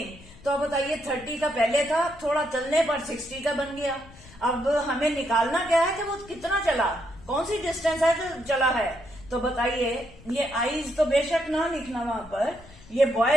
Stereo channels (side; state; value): left; noise; rumble, 22 dB below the sound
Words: तो अब बताइए 30 का पहले था, थोड़ा चलने पर 60 का बन गया. अब हमें निकालना क्या है कि वो कितना चला, कौन सी डिस्टेंस है जो चला है. तो बताइए, ये आईज तो बेशक ना लिखना वहां पर. ये